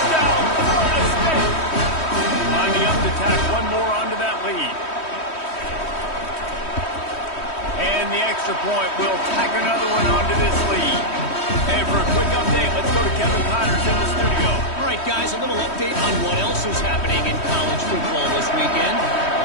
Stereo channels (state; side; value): late; right; 3.1 ms